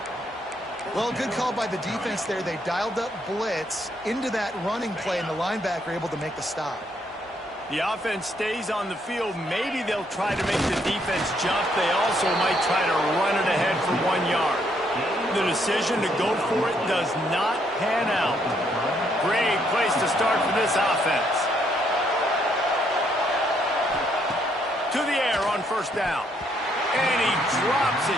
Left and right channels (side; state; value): both; normal; correlation 0.72